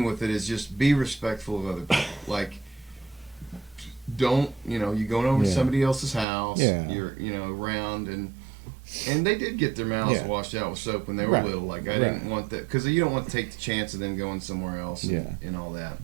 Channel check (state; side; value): drops out; left; at 6.2 s